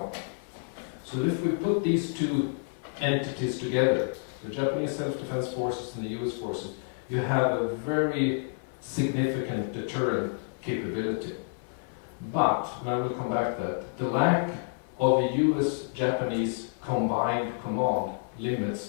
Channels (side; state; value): right; silent; digital silence